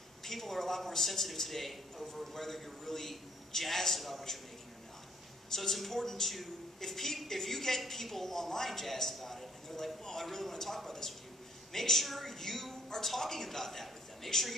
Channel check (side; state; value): both; normal; correlation 0.61